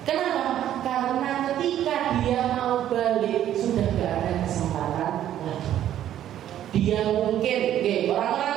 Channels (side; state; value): left; quieter; 11.5 dB